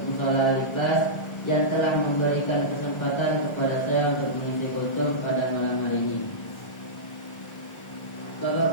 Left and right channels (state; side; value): late; right; 1.4 ms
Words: Mushola Al-Ikhlas yang telah memberikan kesempatan kepada saya untuk mengisi kultum pada malam hari ini.